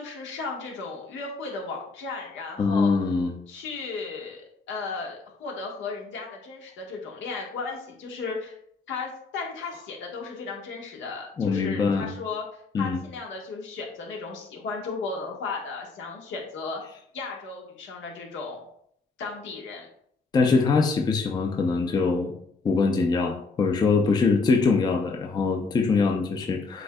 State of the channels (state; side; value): quieter; right; 4.1 dB